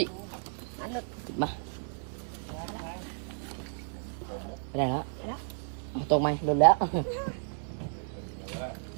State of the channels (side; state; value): left; silent; digital silence